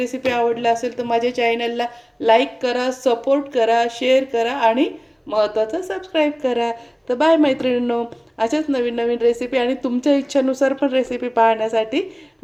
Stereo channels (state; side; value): identical; both; correlation 1.00